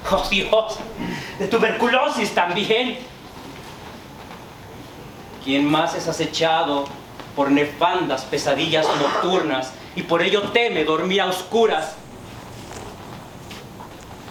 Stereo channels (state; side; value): identical; both; correlation 1.00